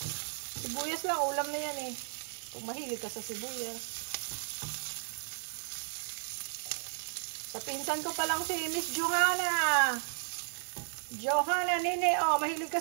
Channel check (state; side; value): silent; left; 55 dB below the other